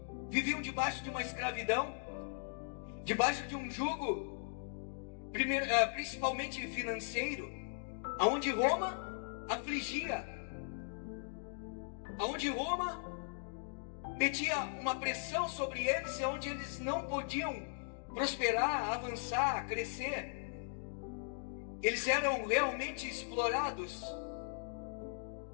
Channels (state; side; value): silent; right; digital silence